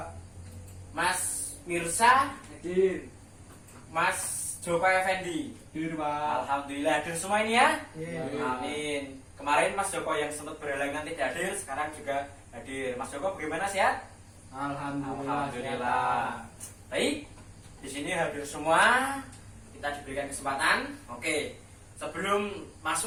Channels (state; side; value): identical; both; correlation 1.00